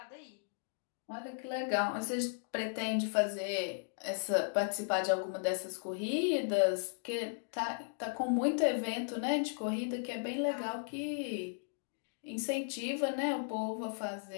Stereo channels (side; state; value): right; silent; digital silence